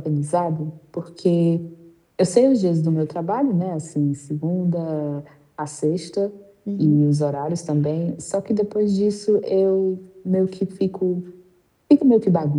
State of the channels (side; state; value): both; identical; correlation 1.00